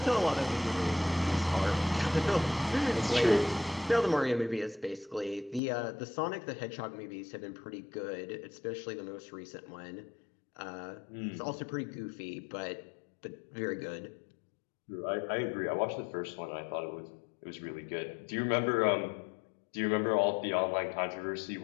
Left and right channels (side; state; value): right; drops out; at 5.6 s